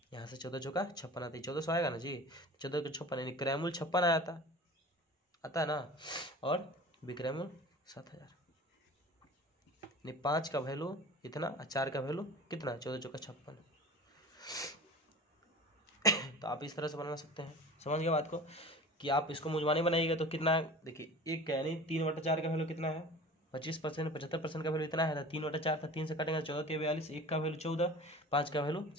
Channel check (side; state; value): both; normal; correlation 0.38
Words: यहाँ से 14 चौका 56 आता है, 1400 आएगा ना जी, 14 को 56 यानी क्रैमूल 56 आया था, आता है ना, और विक्रैमूल 7000, यानी 5 का वैल्यू इतना और 4 का वैल्यू कितना 14 चौका 56। तो आप इस तरह से बना सकते हैं, समझ गए बात को, कि आप इसको मुजमानी बनाइएगा तो कितना, देखिए 1 का यानी 3/4 का वैल्यू कितना है 25%, 75% का वैल्यू इतना है, 3/4 था, 3 से कटेंगे 14 के 42, 1 का वैल्यू 14, 5 का वैल्यू